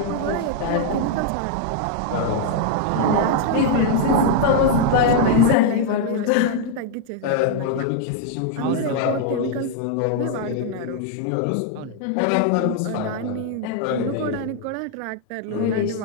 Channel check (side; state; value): both; different; correlation 0.00